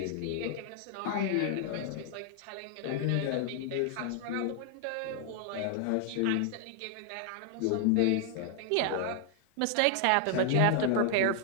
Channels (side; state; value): both; different; correlation 0.00